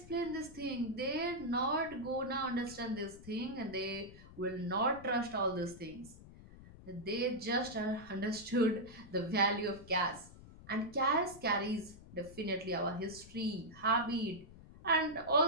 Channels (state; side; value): noise; left; rumble, 18 dB below the sound